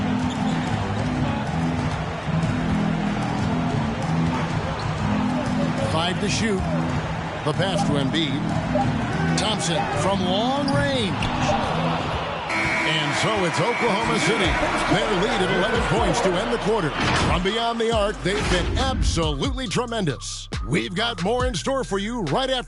Five to shoot. The pass to Embiid. Thompson from long range. And so it's Oklahoma City. Their lead at 11 points to end the quarter. From beyond the arc, they've been absolutely tremendous. We've got more in store for you right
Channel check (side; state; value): both; identical; correlation 1.00